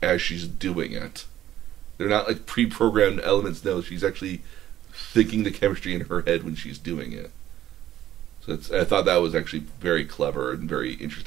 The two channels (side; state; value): left; quieter; 12.5 dB